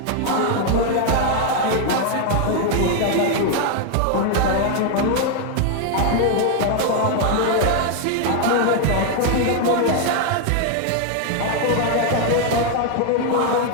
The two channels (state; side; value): different; both; correlation 0.00